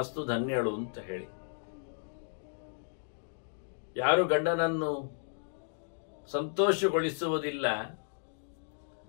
ಧನ್ಯಳು ಅಂತ ಹೇಳಿ. ಯಾರು ಗಂಡನನ್ನು ಸಂತೋಷಗೊಳಿಸುವುದಿಲ್ಲ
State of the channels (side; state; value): right; silent; digital silence